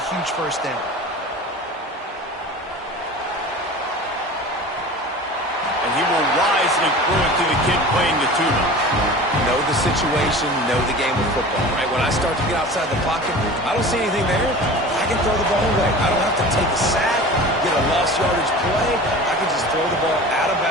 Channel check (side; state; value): both; normal; correlation 0.37